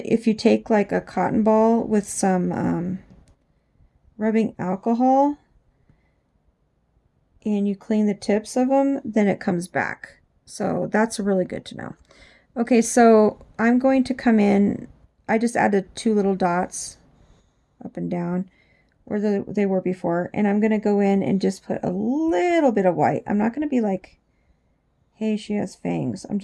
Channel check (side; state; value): both; identical; correlation 1.00